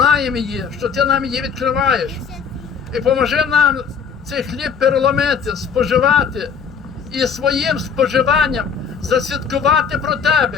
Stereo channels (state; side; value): quieter; right; 6.5 dB